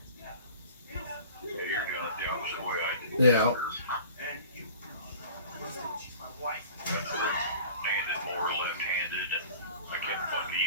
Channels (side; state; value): both; inverted; correlation -0.44